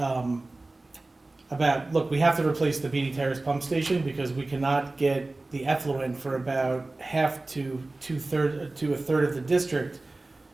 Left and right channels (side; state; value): left; quieter; 3.1 dB